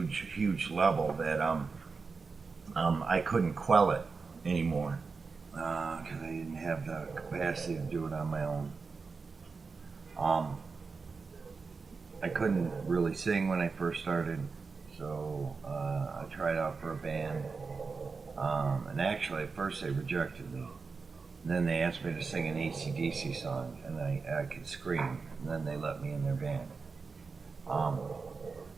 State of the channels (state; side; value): quieter; left; 4.7 dB